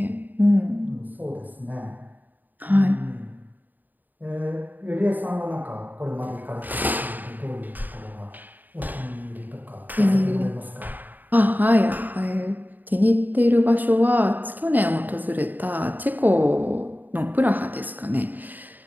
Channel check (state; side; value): late; left; 0.086 ms